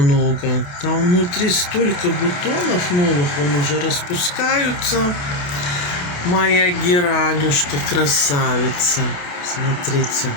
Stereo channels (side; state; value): right; late; 28 ms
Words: Там внутри столько бутонов новых, он уже распускаются. Моя геранюшка красавица. Смотрите.